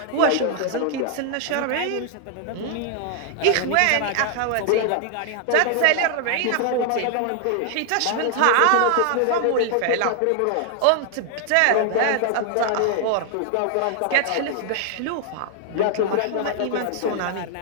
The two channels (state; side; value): different; both; correlation 0.00